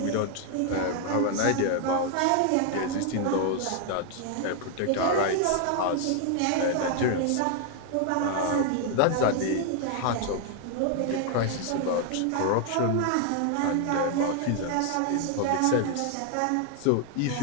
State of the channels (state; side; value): different; both; correlation 0.00